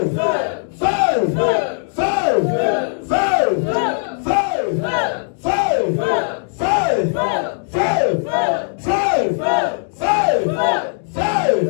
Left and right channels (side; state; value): right; silent; digital silence